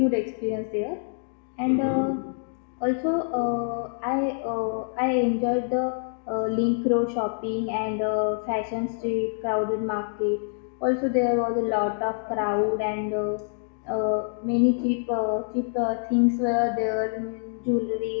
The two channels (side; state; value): right; silent; digital silence